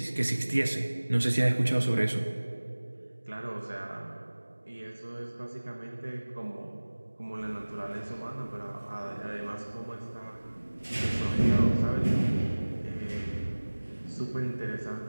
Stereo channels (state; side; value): inverted; both; correlation -1.00